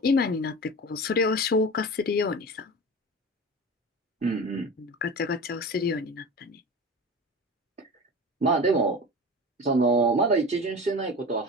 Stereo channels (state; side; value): normal; both; correlation 0.32